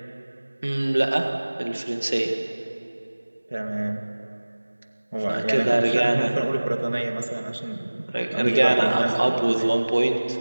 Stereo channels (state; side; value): inverted; both; correlation -1.00